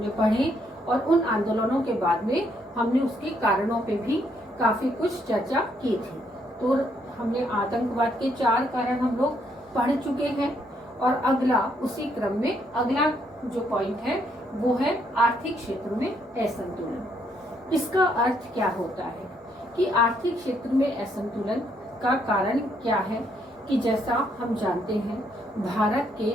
पढ़े और उन आंदोलनों के बाद में हमने उसके कारणों पे भी काफी कुछ चर्चा की थी। तो हमने आतंकवाद के 4 कारण हम लोग पढ़ चुके हैं और अगला उसी क्रम में अगला जो पॉइंट है वो है आर्थिक क्षेत्र में असंतुलन। इसका अर्थ क्या होता है कि आर्थिक क्षेत्र में असंतुलन का कारण क्या है कि जैसा हम जानते हैं भारत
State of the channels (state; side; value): normal; both; correlation 0.72